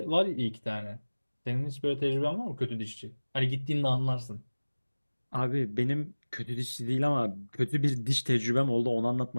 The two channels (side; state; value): both; inverted; correlation -1.00